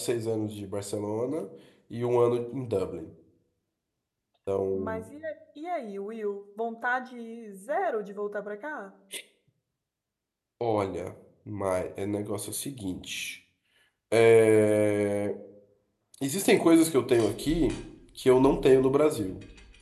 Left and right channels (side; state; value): both; identical; correlation 1.00